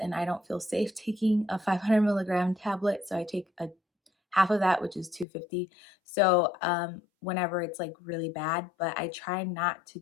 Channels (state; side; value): drops out; right; at 5.2 s